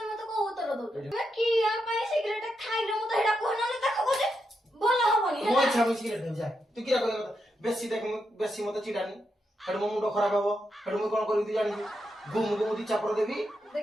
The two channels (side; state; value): both; normal; correlation 0.84